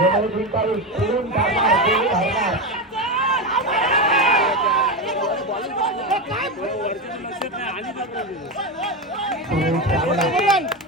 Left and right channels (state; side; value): normal; both; correlation 0.15